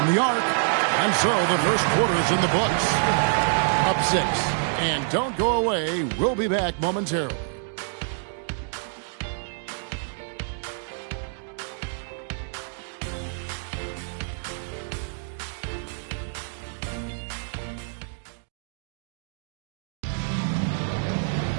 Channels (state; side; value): silent; left; digital silence